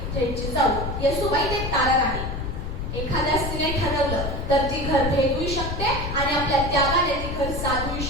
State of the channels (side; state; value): left; noise; rumble, 4 dB below the sound